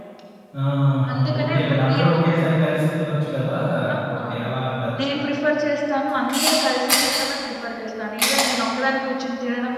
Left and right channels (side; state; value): both; identical; correlation 1.00